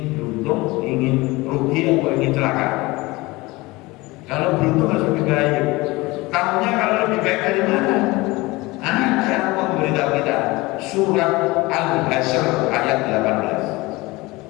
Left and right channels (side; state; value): right; quieter; 21.9 dB